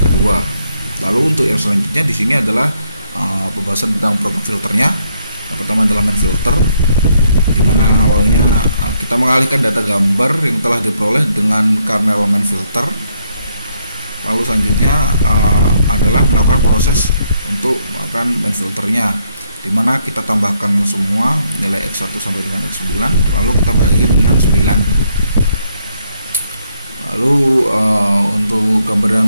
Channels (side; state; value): both; inverted; correlation -0.73